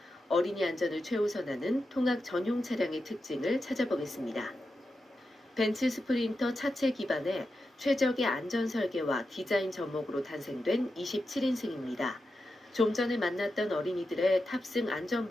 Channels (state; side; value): normal; both; correlation 0.89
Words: 어린이 안전을 최우선하는 통학 전용 차량의 특징을 찾아보겠습니다. 벤츠 스프린터 차체 기반의 최적의 안전 설계와 디자인 접목으로 탄생된 27인승입니다. 좀 전에 만났던 어린이들의 탑승